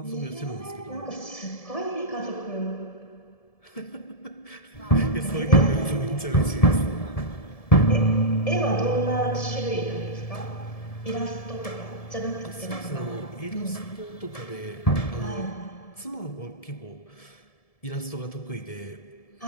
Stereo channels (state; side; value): late; right; 1.7 ms